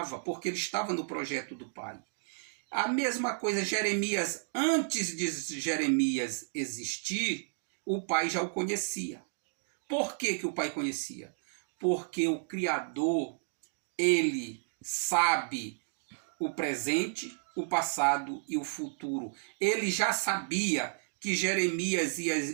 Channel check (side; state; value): left; silent; digital silence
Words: porque ele estava no projeto do pai. A mesma coisa, Jeremias, antes de Jeremias existir, o pai já o conhecia. Por que o pai conhecia? Porque o Criador, ele sabe o presente, o passado e o futuro. Ele já sabia que Jeremias ia